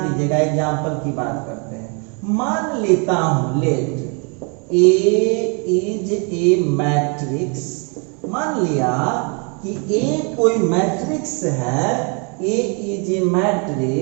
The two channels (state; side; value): quieter; left; 35.3 dB